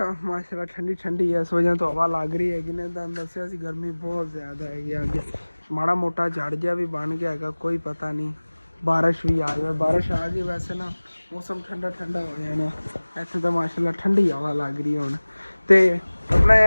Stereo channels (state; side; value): inverted; both; correlation -1.00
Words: ਮਾਸ਼ਾਅੱਲਾ ਠੰਡੀ ਇਸ ਵਜ੍ਹਾ ਤੋਂ ਹਵਾ ਲੱਗ ਰਹੀ ਹੈਗੀ ਨੇ। ਤੁਹਾਨੂੰ ਦੱਸਿਆ ਸੀ ਗਰਮੀ ਬਹੁਤ ਜ਼ਿਆਦਾ ਹੈਗੀ ਅੱਗੇ, ਮਾੜਾ ਮੋਟਾ ਝੜ ਜਿਹਾ ਵੀ ਬਣ ਗਿਆ ਹੈਗਾ, ਕੋਈ ਪਤਾ ਨਹੀਂ ਬਾਰਿਸ਼ ਵੀ ਆ ਜਾਵੇ। ਬਾਰਿਸ਼ ਆ ਗਈ ਵੈਸੇ ਨਾ ਮੌਸਮ ਠੰਡਾ ਹੋ ਜਾਣਾ ਇੱਥੇ ਤਾਂ, ਮਾਸ਼ਾਅੱਲਾ ਠੰਡੀ ਹਵਾ ਲੱਗ ਰਹੀ ਹੁਣ। ਤੇ ਆਪਣਾ